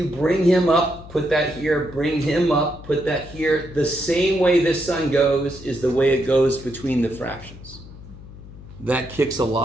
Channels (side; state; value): left; noise; hum, 17 dB below the sound